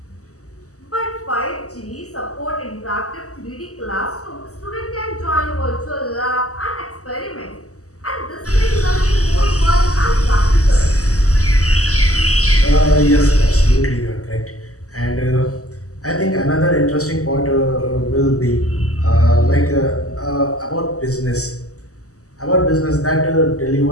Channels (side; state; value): right; late; 0.66 ms